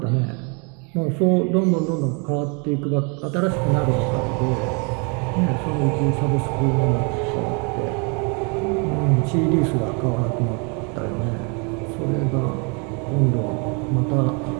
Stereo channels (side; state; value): left; quieter; 34.3 dB